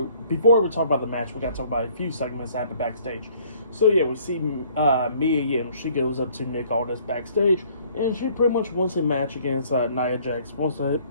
before we talk about the match, we got to talk about a few segments that happened backstage. So yeah, we see Mia Yim. She goes up to Nick Aldis backstage, and she pretty much wants a match against Nia Jax. Wants to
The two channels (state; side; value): inverted; both; correlation -0.59